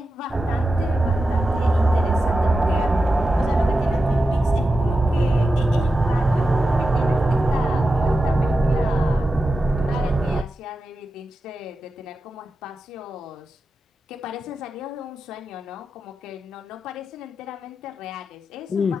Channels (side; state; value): both; normal; correlation 0.91